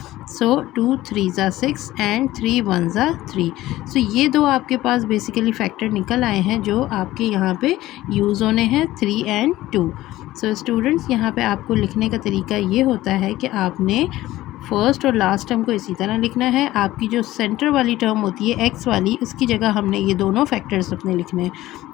सो 2 3 ज़ा 6 एंड 3 1 ज़ा 3। सो ये दो आपके पास बेसिकली फैक्टर निकल आए हैं जो आपके यहाँ पे यूज़ होने हैं, 3 and 2। सो स्टूडेंट्स यहाँ पे आपको लिखने का तरीका ये होता है कि आपने फर्स्ट और लास्ट टर्म को इसी तरह लिखना है। आपकी जो सेंटर वाली टर्म होती है एक्स वाली, उसकी जगह हमने ये दोनों फैक्टर्स अपने लिखने हैं।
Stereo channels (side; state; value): right; quieter; 16.1 dB